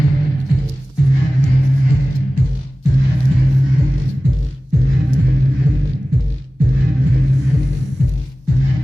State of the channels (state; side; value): normal; both; correlation 0.97